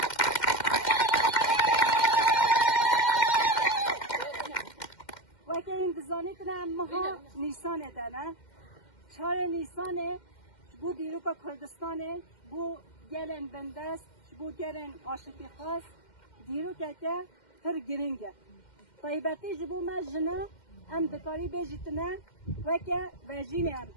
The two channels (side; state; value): right; late; 2.1 ms